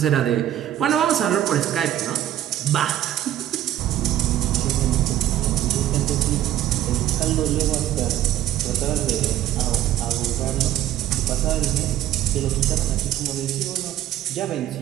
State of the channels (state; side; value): quieter; left; 12.4 dB